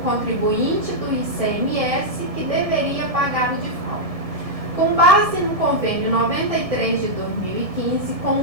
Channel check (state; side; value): late; left; 1.7 ms